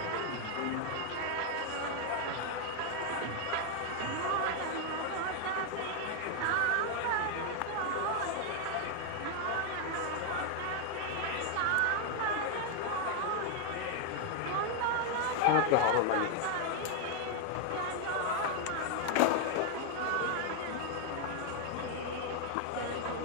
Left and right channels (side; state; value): both; different; correlation 0.01